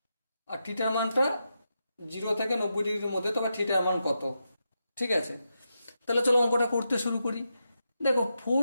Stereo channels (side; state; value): both; inverted; correlation -0.86